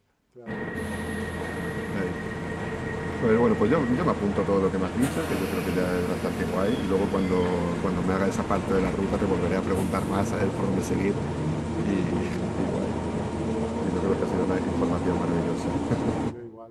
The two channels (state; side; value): identical; both; correlation 1.00